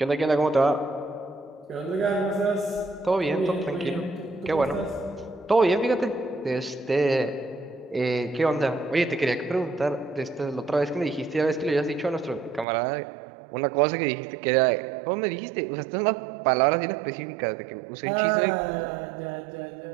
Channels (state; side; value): drops out; left; at 12.7 s